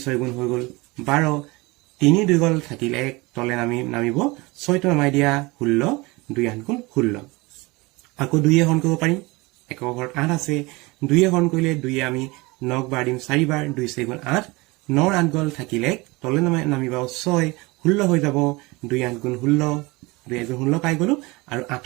6 গুণ হৈ গল 12 3 2 গল থাকিল 1 তলে নামিব 6 টো নামাই দিয়া 16 2 8 গুণ 16 আকৌ 2 হৰণ কৰিব পাৰিম একক ঘৰত 8 আছে 2 হৰণ কৰিলে 2 আমি 9ক বাৰ দিম 4 বাৰ 2 6 গুণ 8 9 8 গল থাকিল 1 তলে নামিব 6 16 হৈ যাব 2 8 গুণ 16 2 8 গুণ 16 পাই গলো আৰু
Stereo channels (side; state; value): left; quieter; 23.9 dB